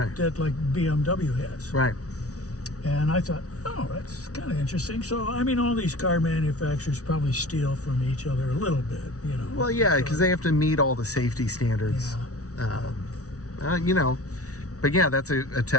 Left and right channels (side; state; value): right; late; 0.66 ms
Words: that like BMW has. Right. And I thought, oh, that's kind of interesting. So, I mean, all these car manufacturers probably steal from each other a little bit, Well, yeah, because they have to meet all the safety standards. Yeah. But yeah, that's a